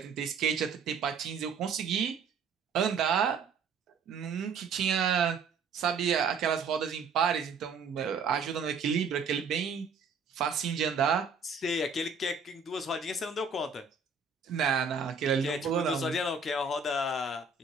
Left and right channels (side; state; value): left; quieter; 5.0 dB